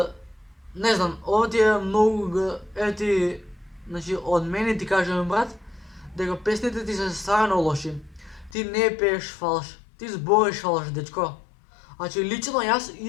не знам, ова ти е много, значи од мене ти кажем брат, дека песните ти се стварно лоши. Ти не пееш фалш, ти збориш фалш, дечко. Значи, лично јас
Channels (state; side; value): drops out; right; at 8.6 s